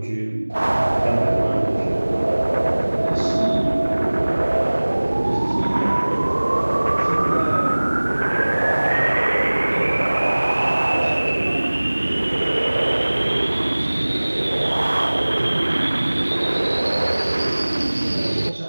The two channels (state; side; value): inverted; both; correlation -1.00